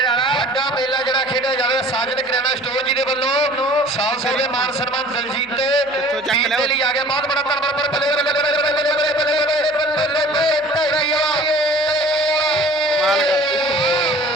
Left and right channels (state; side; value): noise; right; hum, 30 dB below the sound